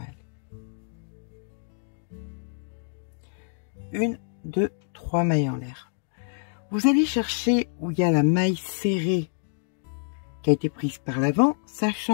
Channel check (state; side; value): silent; right; digital silence